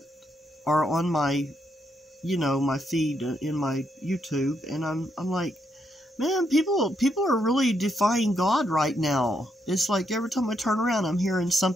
are on my, my feed in my YouTube. And I'm like, man, people are really defying God right now. It's like every time I turn around, I'm hearing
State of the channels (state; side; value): normal; both; correlation 0.78